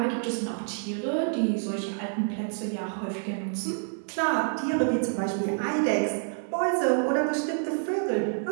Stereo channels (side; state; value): left; silent; digital silence